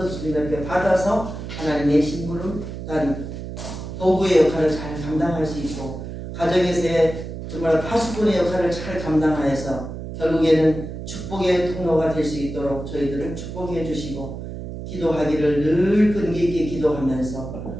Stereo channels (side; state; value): right; noise; hum, 8 dB below the sound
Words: 주님 앞에 받아서 하나님의 심부름단 도구의 역할을 잘 감당할 수 있고 가정에서의 정말 파수꾼의 역할을 잘 감당하여서 결국에는 축복의 통로가 될 수 있도록 저희들을 축복해 주시고 기도하기를 늘 끈기 있게 기도하면서